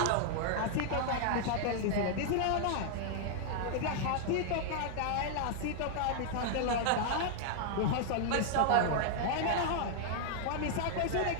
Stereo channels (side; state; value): both; different; correlation -0.01